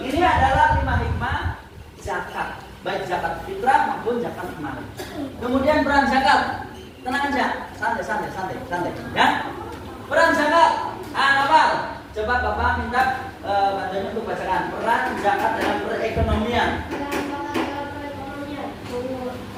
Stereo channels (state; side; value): identical; both; correlation 1.00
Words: Ini adalah 5 hikmah zakat, baik zakat fitrah maupun zakat mal. Kemudian peran zakat. Tenang aja, santai. Ya. Peran zakat. Apa? Coba Bapak minta bantuan untuk bacakan peran zakat dalam perekonomian.